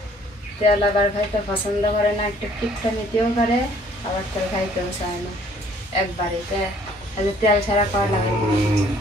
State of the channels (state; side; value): normal; both; correlation 0.59